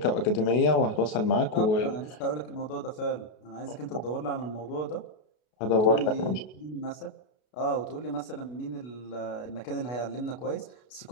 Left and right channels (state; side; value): late; right; 33 ms